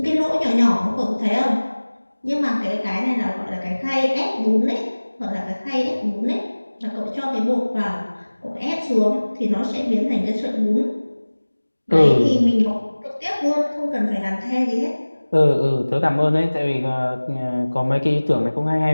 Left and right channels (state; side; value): inverted; both; correlation -1.00